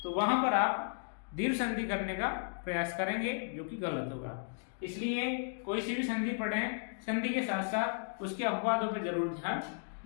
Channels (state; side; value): silent; right; digital silence